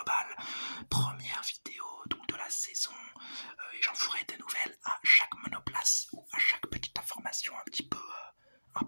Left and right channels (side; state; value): both; inverted; correlation -1.00